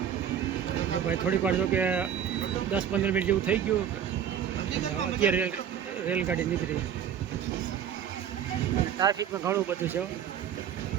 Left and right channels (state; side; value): quieter; left; 9.1 dB